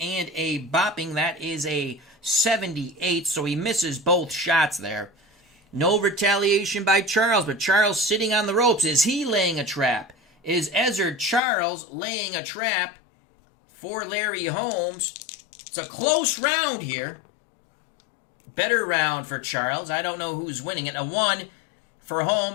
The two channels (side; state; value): right; drops out; at 11.4 s